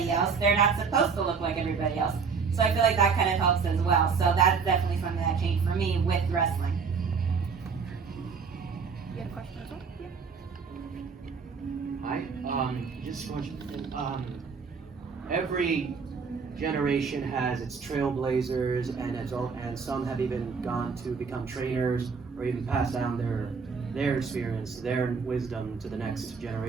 else. They're not supposed to look like everybody else. So I feel like that kind of helps as well. So that's definitely something that changed for me with wrestling. You had a question as well? Yeah. Hi, just one. Every generation has its trailblazers, and some have even gone to become trainers or even pass down their experience, their wisdom to the next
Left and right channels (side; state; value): left; quieter; 5.5 dB